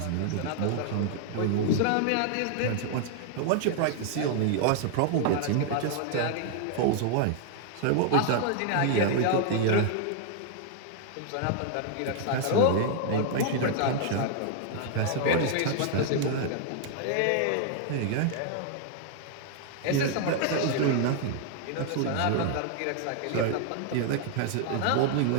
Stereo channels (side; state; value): both; different; correlation 0.00